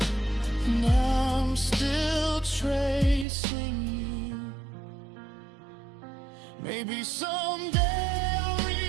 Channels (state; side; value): drops out; left; at 3.2 s